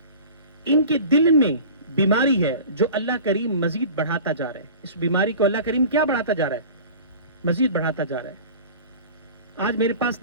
ان کے دل میں بیماری ہے جو اللہ کریم مزید بڑھاتا جا رہا ہے. اس بیماری کو اللہ کریم کیا بڑھاتا جا رہا ہے؟ مزید بڑھاتا جا رہا ہے. آج میرے پاس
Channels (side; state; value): both; inverted; correlation -0.40